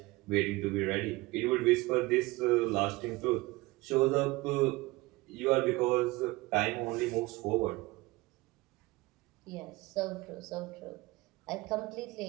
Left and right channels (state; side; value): quieter; left; 21.3 dB